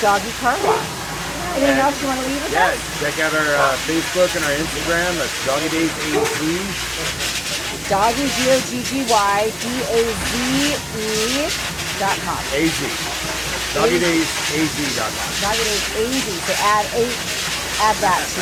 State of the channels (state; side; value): identical; both; correlation 1.00